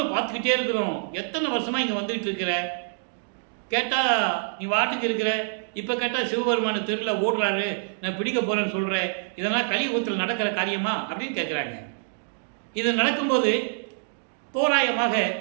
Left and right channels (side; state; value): left; silent; digital silence